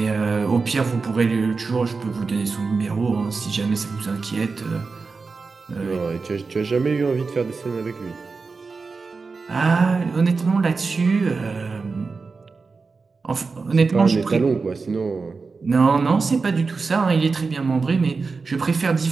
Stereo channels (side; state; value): left; quieter; 4.4 dB